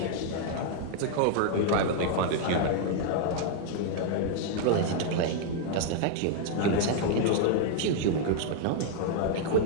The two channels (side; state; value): both; different; correlation 0.00